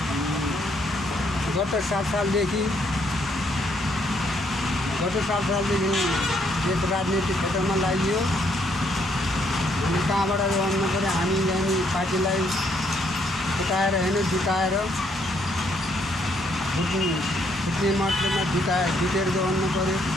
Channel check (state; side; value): normal; both; correlation 0.71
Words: गत 7 सालदेखि देश राजनीतिक क्षेत्रमा लाग्यो। अनि कहाँबाट भन्नु पऱ्यो, हामी यहाँ पार्टीलाई फुटाएर होइन जुटाएर फुट्ने मतलबमा जुटेर गर्नु पऱ्यो।